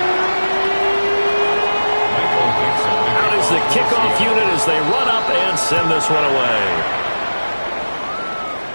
Out is the kickoff unit as they run up and send this one away.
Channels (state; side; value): inverted; both; correlation -1.00